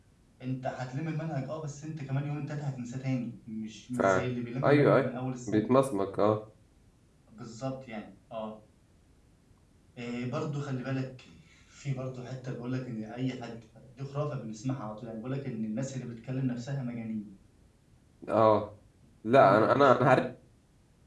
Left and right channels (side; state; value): both; identical; correlation 1.00